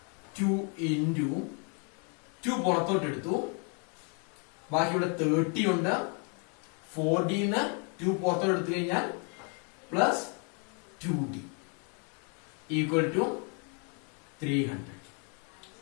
2 into 2 പുറത്തോട്ട് എടുത്തു. ബാക്കി ഇവിടെ 30 ഉണ്ട്. 4d ന്ന് 2 പുറത്തോട്ട് എടുത്തു കഴിഞ്ഞാൽ plus 2d equal to 300.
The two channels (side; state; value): right; quieter; 37.4 dB